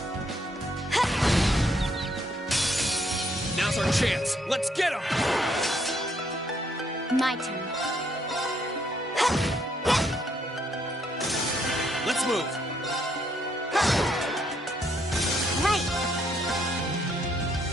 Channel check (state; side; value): normal; both; correlation 0.71